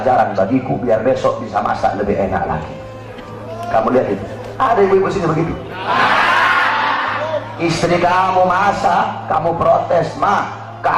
bagiku, biar besok bisa masak lebih enak lagi. Kamu lihat itu, ada ibu-ibu sini begitu. Istri kamu masak, kamu protes, mah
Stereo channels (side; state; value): both; identical; correlation 1.00